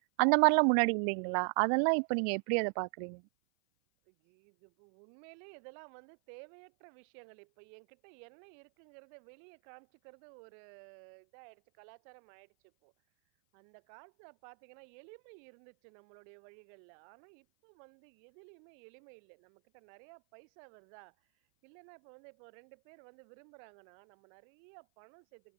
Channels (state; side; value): silent; left; 52 dB below the other